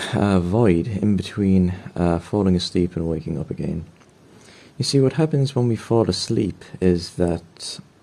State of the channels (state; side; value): identical; both; correlation 1.00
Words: void in between falling asleep and waking up again. You see, what happens when we fall asleep is that